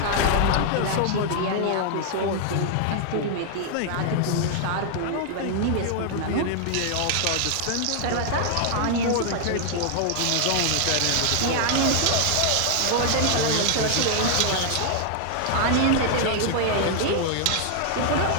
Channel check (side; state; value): both; different; correlation 0.00